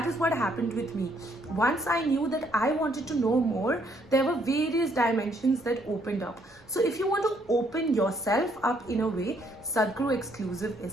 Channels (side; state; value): both; normal; correlation 0.69